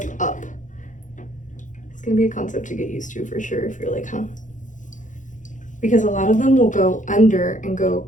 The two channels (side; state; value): right; late; 0.37 ms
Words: up. It's gonna be a concept to get used to for sure if you're like, huh? Because a lot of them will go under and go